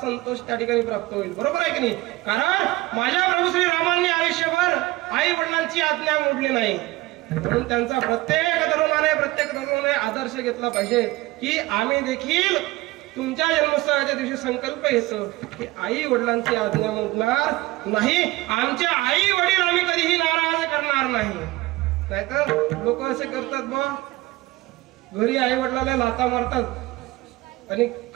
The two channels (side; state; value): left; quieter; 19.8 dB